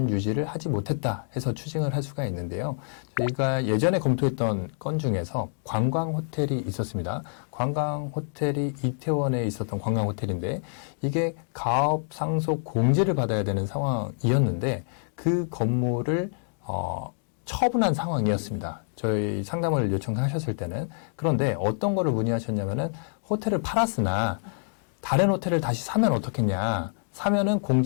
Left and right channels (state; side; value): silent; right; 60 dB below the other